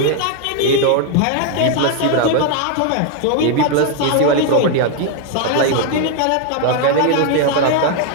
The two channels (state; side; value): different; both; correlation 0.00